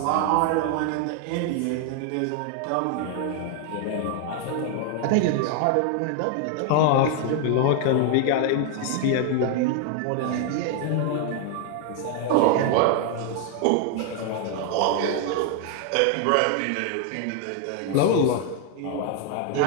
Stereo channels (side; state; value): both; different; correlation 0.00